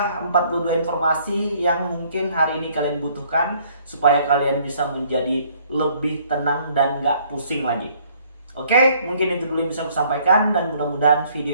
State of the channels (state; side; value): inverted; both; correlation -0.62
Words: 42 informasi yang mungkin hari ini kalian butuhkan supaya kalian bisa menjadi lebih tenang dan gak pusing lagi. Oke, mungkin itu dulu yang bisa aku sampaikan dan mudah-mudahan